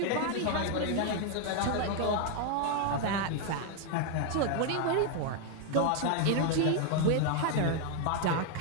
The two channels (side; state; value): both; different; correlation 0.01